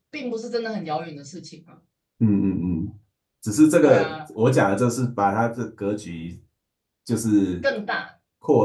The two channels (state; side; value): identical; both; correlation 1.00